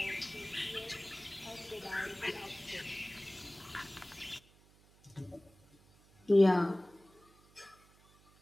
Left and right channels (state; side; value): noise; right; hum, 28 dB below the sound